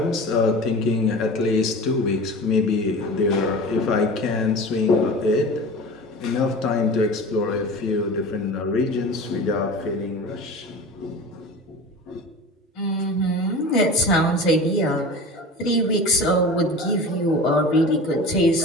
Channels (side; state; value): both; normal; correlation 0.35